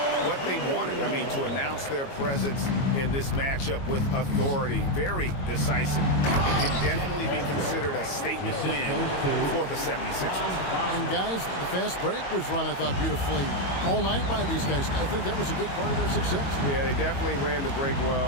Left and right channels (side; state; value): right; late; 22 ms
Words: what they wanted. I mean, to announce their presence in this matchup with authority, very decisive. It can definitely be considered a statement win for the 76ers. And guys, the fast break was run, I thought, beautifully all night by these guys. I think that was a big part of their success. Yeah, they definitely ran the break well.